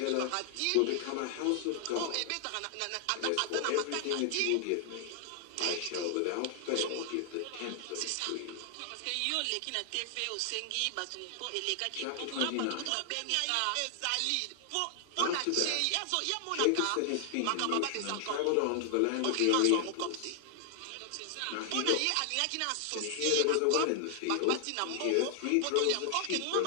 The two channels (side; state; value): both; different; correlation 0.00